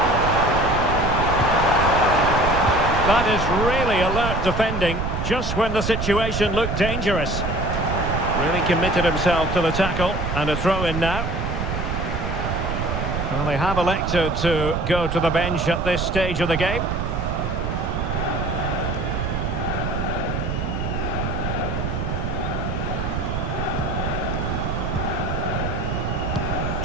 That is really alert defending, just when the situation looked dangerous. Really committed himself to the tackle, and a throw-in now. Well, they have elected to go to the bench at this stage of the game.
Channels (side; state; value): right; noise; rumble, 2 dB below the sound